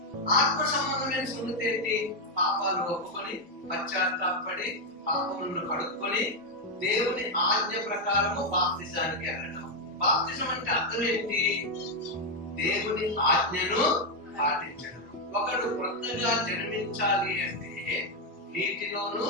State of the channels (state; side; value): normal; both; correlation 0.03